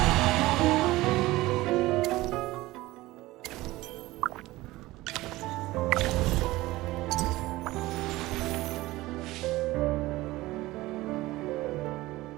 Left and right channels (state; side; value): quieter; left; 18.5 dB